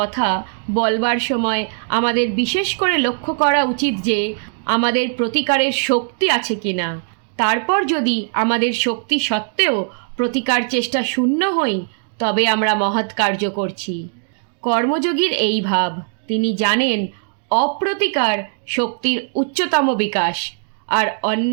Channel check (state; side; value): silent; left; digital silence